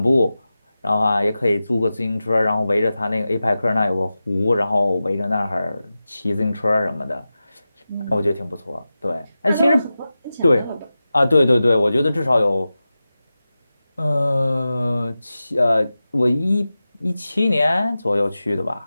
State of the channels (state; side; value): inverted; both; correlation -0.94